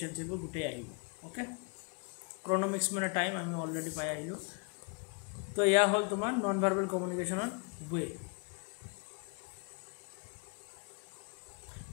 এইবোৰ গোটেই আহিব, অ'কে। ক্ৰনমিক্স মানে টাইম, আমি অলৰেডি পাই আহিলোঁ। তো এয়া হ'ল তোমাৰ নন ভাৰ্বেল কমিউনিকেশ্যনৰ ৱে।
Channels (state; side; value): quieter; right; 34.0 dB